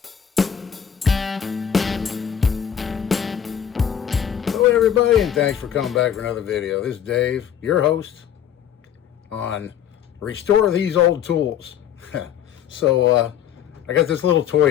Hello everybody, and thanks for coming back for another video. This is Dave, your host on Restore These Old Tools. So I got this little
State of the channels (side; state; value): right; quieter; 9.2 dB